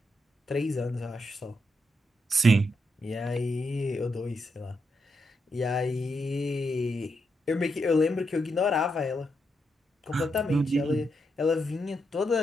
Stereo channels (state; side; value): normal; both; correlation 0.82